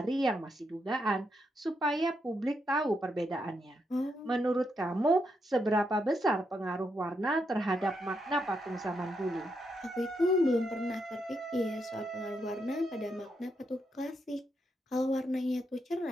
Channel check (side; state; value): both; normal; correlation 0.80